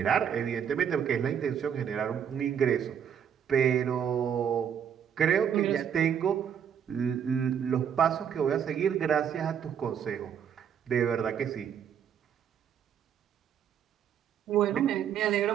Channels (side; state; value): left; quieter; 8.3 dB